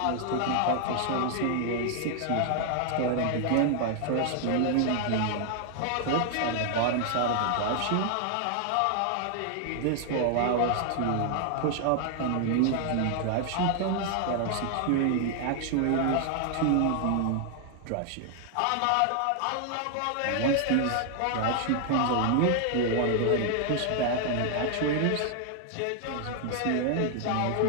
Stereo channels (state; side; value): different; both; correlation 0.00